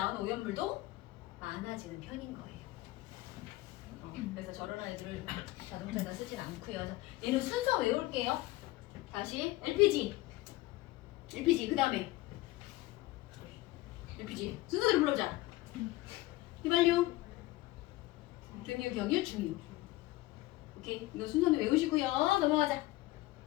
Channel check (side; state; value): right; quieter; 18.6 dB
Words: 오염물도 많아지는 편인 거예요. 그래서 저런 아이들을 자동차에다 쓰진 않고요. 그래서 얘는 순서 외울게요. 다시 LPG 그 다음에 LPG 순서대로 불러보자. 휘발유, 등유, 경유, 중유. 오케이, 이거 순서는 외우시고요. 넘어가자.